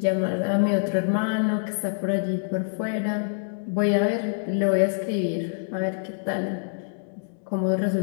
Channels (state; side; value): silent; right; digital silence